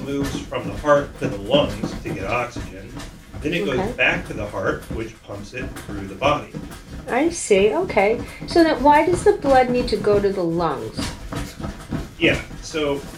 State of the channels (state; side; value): identical; both; correlation 1.00